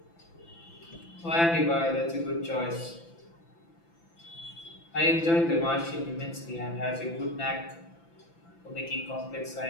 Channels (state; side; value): late; right; 5.9 ms